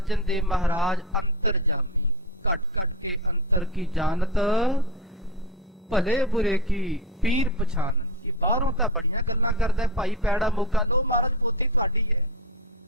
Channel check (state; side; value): normal; both; correlation 0.16